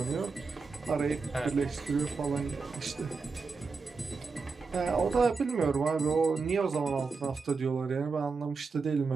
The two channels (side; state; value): left; quieter; 4.6 dB